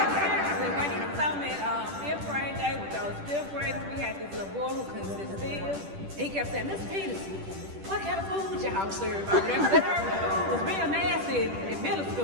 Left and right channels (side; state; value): left; late; 10 ms